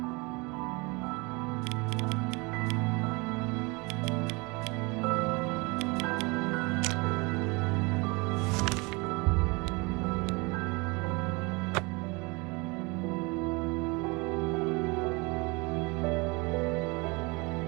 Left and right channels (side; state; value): left; quieter; 27.1 dB